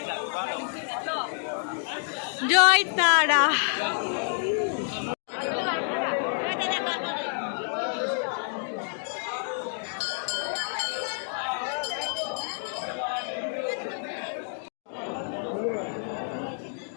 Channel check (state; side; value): silent; right; 56 dB below the other